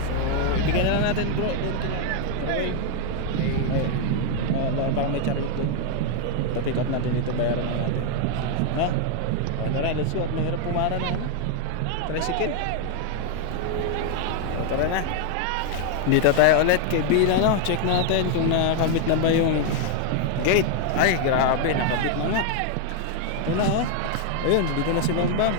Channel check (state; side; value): different; both; correlation 0.00